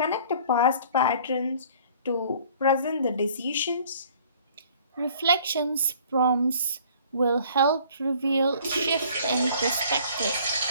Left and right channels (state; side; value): inverted; both; correlation -0.53